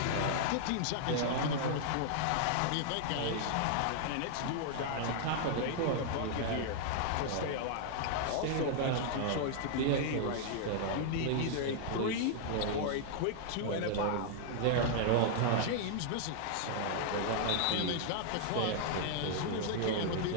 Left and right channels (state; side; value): different; both; correlation -0.01